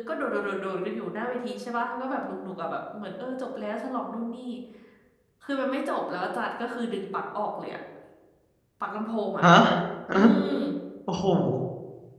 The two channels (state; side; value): identical; both; correlation 1.00